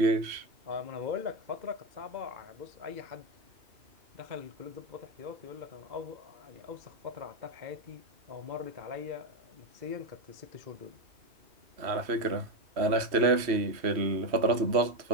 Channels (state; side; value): late; left; 3.1 ms